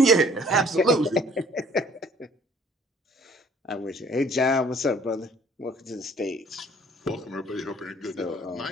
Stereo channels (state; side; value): normal; both; correlation 0.57